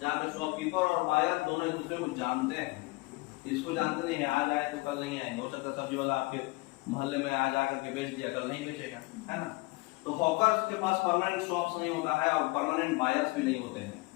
पे शॉपकीपर और बायर दोनों एक दूसरे को जानते हैं। इसको जानते नहीं है, आज आए तो कल नहीं आएंगे, हो सकता है सब्जी वाला आपके मोहल्ले में आज आकर के बेच दिया, कल नहीं बेचेगा, है ना। तो हॉकर्स के पास परमानेंट शॉप्स नहीं होता है और परमानेंट बायर्स भी नहीं होते हैं।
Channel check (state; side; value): quieter; right; 23.9 dB